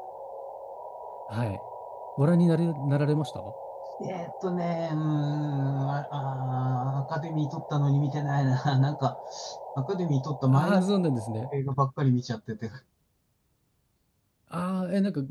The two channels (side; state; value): both; identical; correlation 1.00